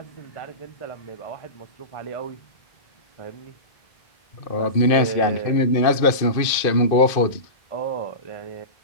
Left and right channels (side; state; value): right; late; 2.5 ms